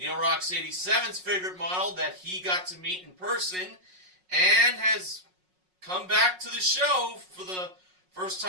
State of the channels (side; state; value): left; late; 5.5 ms